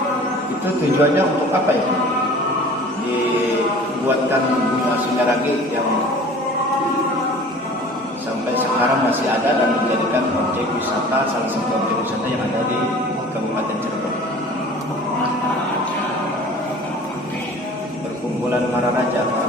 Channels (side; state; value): both; normal; correlation 0.45